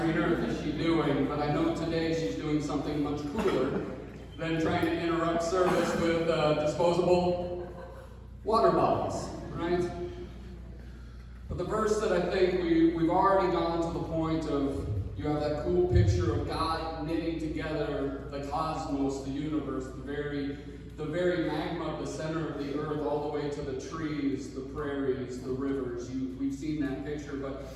earth is she doing, but I know today she's doing something much cooler than trying to interrupt service with disposable water bottles, right? But the verse that I think we've already gone to the point of, you have that cool picture of God knitting together the cosmos, the universe, the very magma of the center of the earth, all the way to the trees, the prairies, the rivers. We've seen that picture, but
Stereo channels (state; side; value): identical; both; correlation 1.00